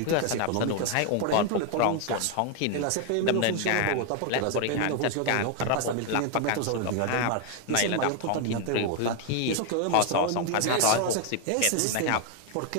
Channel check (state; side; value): different; both; correlation 0.01